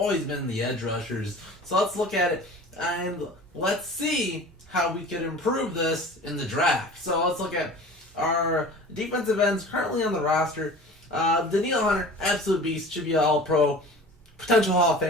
been the edge rushers. So let's look at it and let's see how we could improve this in the draft. So let's look at our defensive ends currently on the roster. Danielle Hunter, absolute beast, should be an all-pro, potential Hall of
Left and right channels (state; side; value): normal; both; correlation 0.40